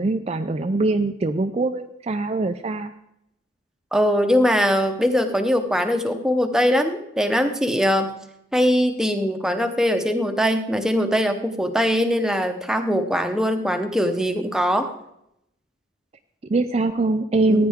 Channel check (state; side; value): normal; both; correlation 0.78